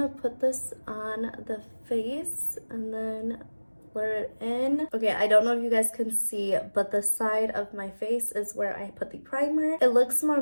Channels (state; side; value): inverted; both; correlation -1.00